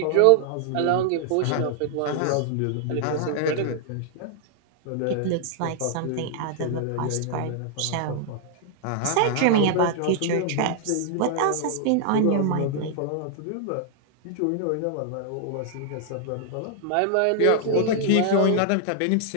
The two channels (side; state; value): both; different; correlation -0.01